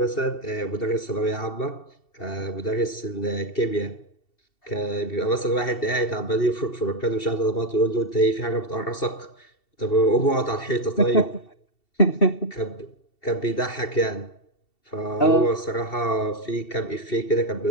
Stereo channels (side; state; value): right; late; 2.7 ms